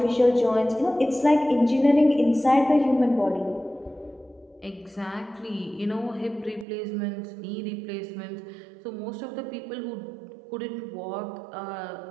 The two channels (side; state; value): left; drops out; at 6.7 s